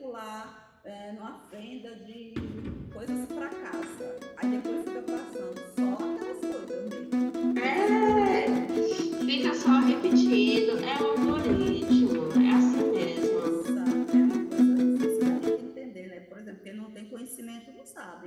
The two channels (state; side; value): identical; both; correlation 1.00